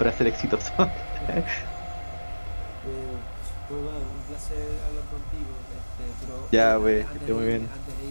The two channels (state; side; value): inverted; both; correlation -1.00